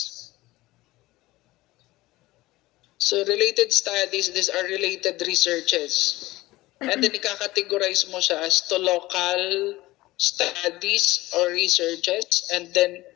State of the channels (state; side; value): quieter; right; 18.6 dB